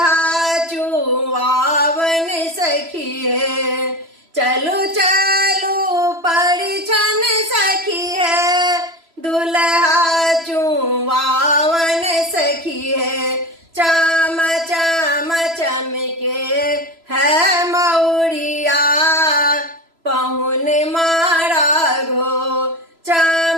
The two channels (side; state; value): left; late; 3.0 ms